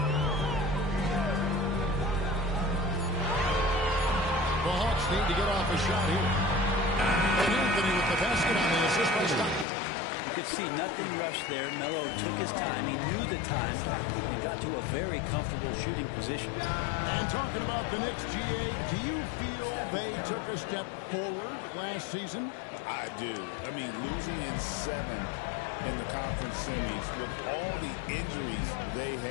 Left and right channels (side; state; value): right; drops out; at 9.7 s